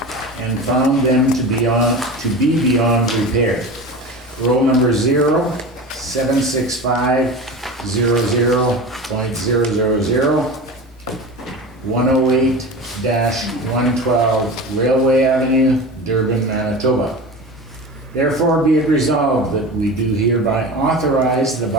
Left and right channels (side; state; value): both; normal; correlation 0.31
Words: and found them to be beyond repair. Roll number 076500.000 108-112 Railway Avenue, Durban, Manitoba. Therefore, be it resolved that we do hereby authorize the